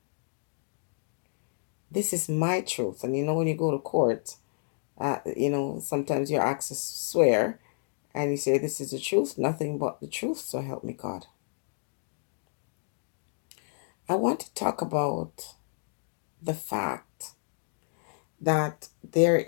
This is my truth. And when you go to court, sometimes you're asked to swear and you say, "This is the truth, nothing but the truth, so help me God." I want to talk about the fact that there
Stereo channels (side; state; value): right; silent; digital silence